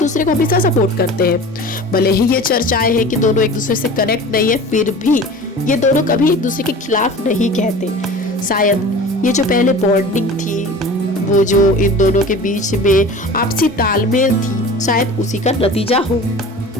को हमेशा सपोर्ट करते हैं। भले ही ये चर्चाएं हैं कि दोनों एक दूसरे से कनेक्ट नहीं है, फिर भी ये दोनों कभी एक दूसरे के खिलाफ नहीं कहते। शायद ये जो पहले बॉन्डिंग थी, वो जो इन दोनों के बीच में आपसी तालमेल थी, शायद उसी का नतीजा हो।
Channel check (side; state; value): both; normal; correlation 0.38